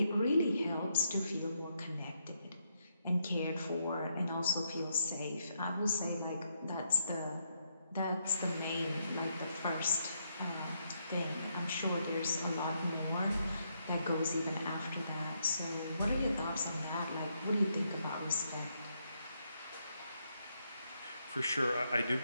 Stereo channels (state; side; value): inverted; both; correlation -0.77